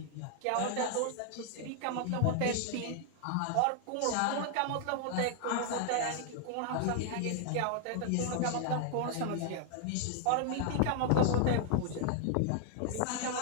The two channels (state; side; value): different; both; correlation 0.00